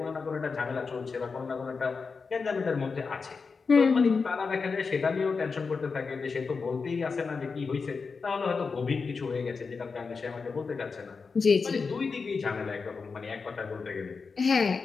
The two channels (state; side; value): quieter; right; 4.9 dB